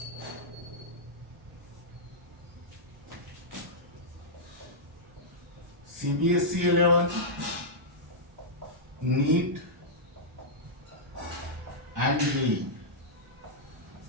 CBSE 11, NEET and JEE.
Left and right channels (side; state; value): both; normal; correlation -0.10